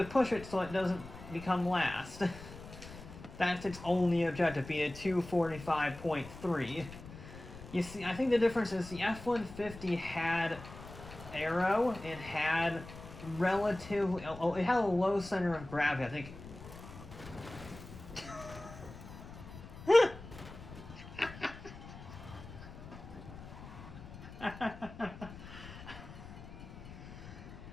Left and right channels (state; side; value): noise; left; rumble, 14 dB below the sound